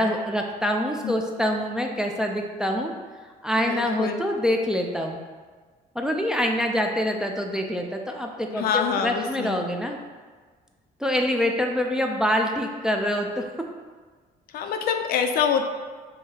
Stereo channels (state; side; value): normal; both; correlation 0.59